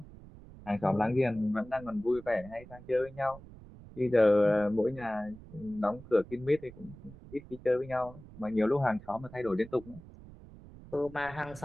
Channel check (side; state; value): right; noise; rumble, 18 dB below the sound